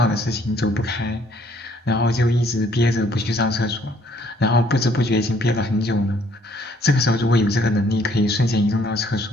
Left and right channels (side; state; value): both; normal; correlation 0.63